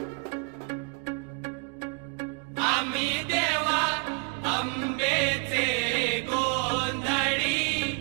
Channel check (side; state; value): left; quieter; 34.5 dB